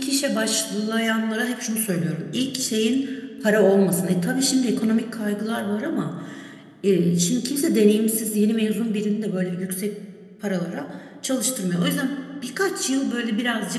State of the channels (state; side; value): identical; both; correlation 1.00